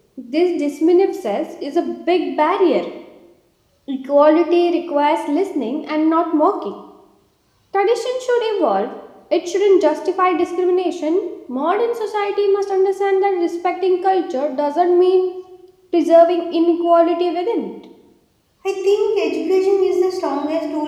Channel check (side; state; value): both; identical; correlation 1.00